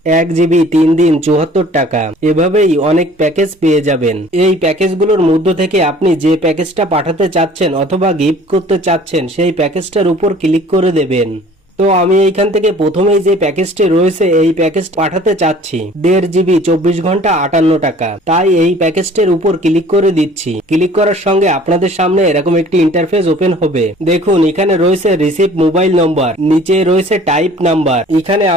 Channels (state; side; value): normal; both; correlation 0.50